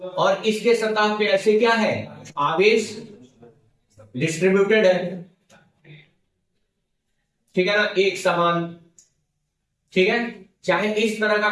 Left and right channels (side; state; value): both; identical; correlation 1.00